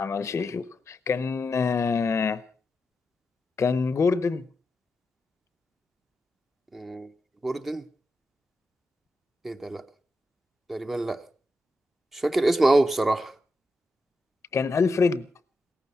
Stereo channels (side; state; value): both; normal; correlation 0.87